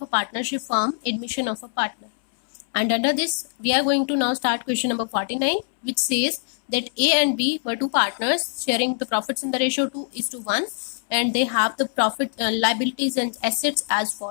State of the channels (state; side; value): silent; right; 63 dB below the other